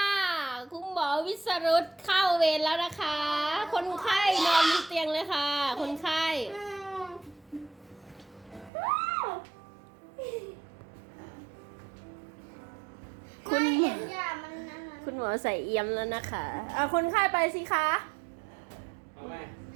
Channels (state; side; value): drops out; left; at 8.7 s